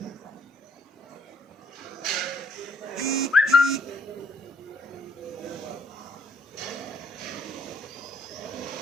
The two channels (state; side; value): normal; both; correlation 0.65